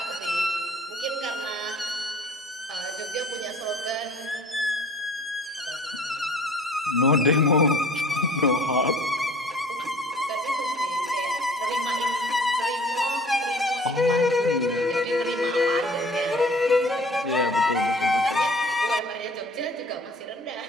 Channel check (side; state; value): both; normal; correlation 0.50